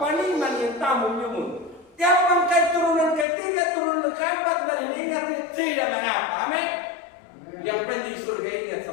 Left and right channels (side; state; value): right; drops out; at 3.2 s